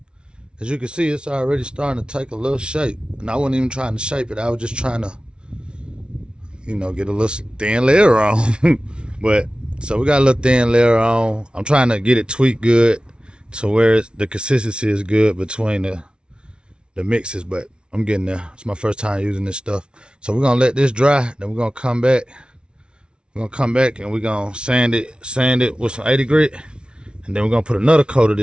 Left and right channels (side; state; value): left; late; 0.056 ms